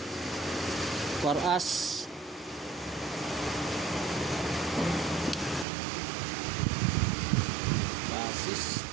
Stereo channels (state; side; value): drops out; left; at 5.7 s